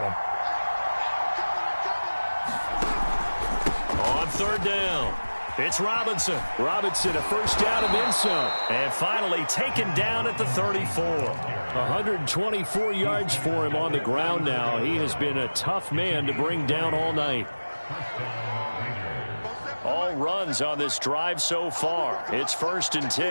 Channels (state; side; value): inverted; both; correlation -1.00